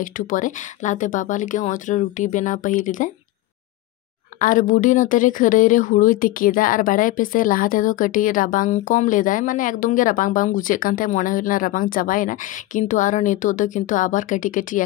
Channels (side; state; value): right; quieter; 16.9 dB